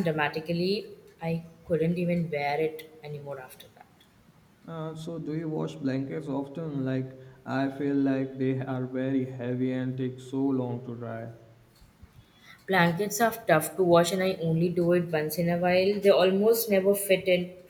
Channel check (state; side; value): identical; both; correlation 1.00